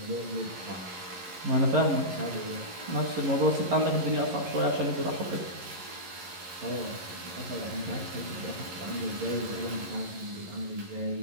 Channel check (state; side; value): late; left; 11 ms